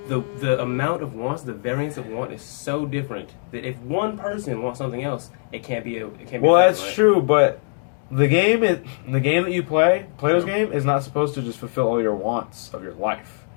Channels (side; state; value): right; silent; 64 dB below the other